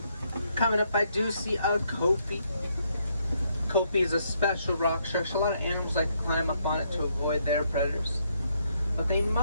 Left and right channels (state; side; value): inverted; both; correlation -0.74